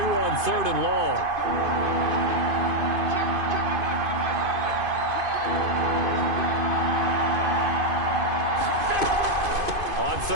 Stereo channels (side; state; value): left; late; 2.5 ms